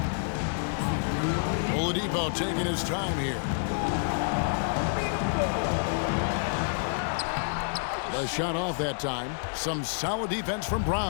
Oladipo taking his time here. The shot off that time. Some solid defense from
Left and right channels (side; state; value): right; silent; digital silence